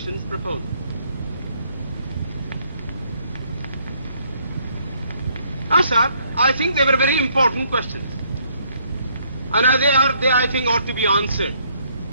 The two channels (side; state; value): both; inverted; correlation -0.67